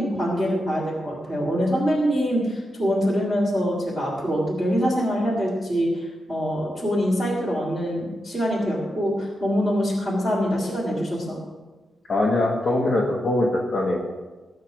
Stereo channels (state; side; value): normal; both; correlation 0.86